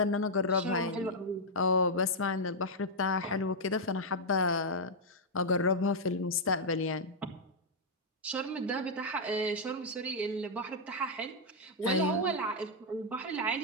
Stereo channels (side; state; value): both; normal; correlation -0.04